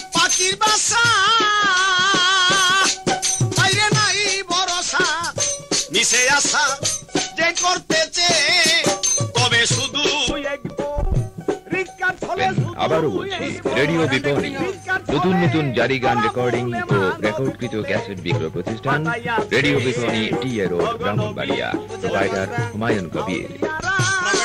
পাখির বাসা বাইরে নাই ভরসা মিশে আসা যে করতেছে তবে শুধু আবারও বলছি রেডিও বিপণী নতুন নতুন জারি গান রেকর্ডিং ও রেকর্ডকৃত ক্যাসেট বিক্রয় প্রতিষ্ঠান রেডিও বিপণী টি এ রোড ব্রাহ্মণবাড়িয়া প্রোপাইটার হুমায়ুন কবির।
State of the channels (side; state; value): both; identical; correlation 1.00